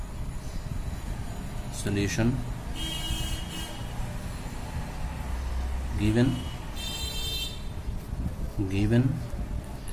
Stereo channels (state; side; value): identical; both; correlation 1.00